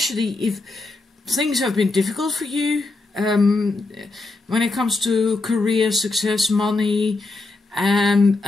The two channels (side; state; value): right; quieter; 3.3 dB